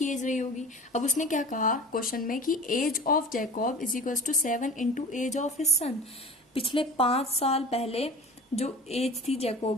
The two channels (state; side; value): normal; both; correlation 0.38